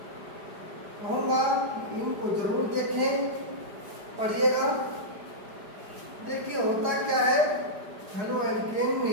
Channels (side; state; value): left; late; 5.0 ms